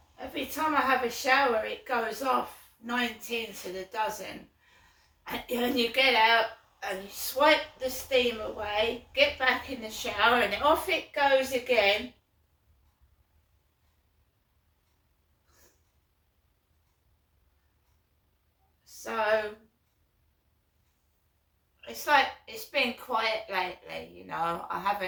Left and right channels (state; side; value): identical; both; correlation 1.00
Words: Every time I have a shower, it goes off 19 to the dozen. And you get out and you swipe the steam away, get back in the shower, and off it goes again. So it's like it's been quiet lately, you know. I